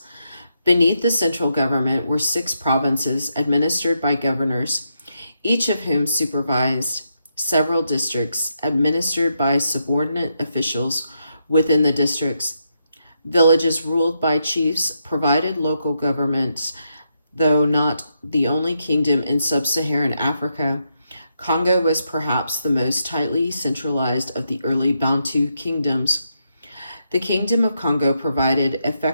Beneath the central government were 6 provinces administered by governors, each of whom supervised several districts administered by subordinate officials within the districts. Villages ruled by chiefs provided local governments, though not the only kingdom in sub-Saharan Africa. Congo was perhaps the most tightly centralized of the early Bantu kingdoms. The Kingdom of Congo provided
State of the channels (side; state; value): both; inverted; correlation -0.81